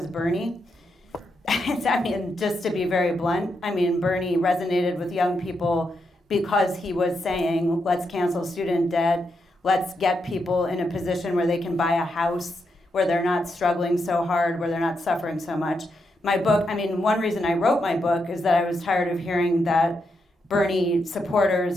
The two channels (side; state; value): both; normal; correlation 0.82